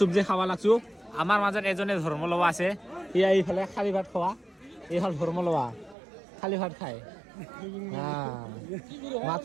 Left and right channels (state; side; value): drops out; left; at 6.0 s